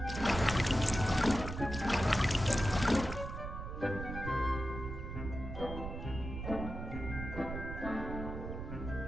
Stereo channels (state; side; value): noise; right; rumble, 7 dB below the sound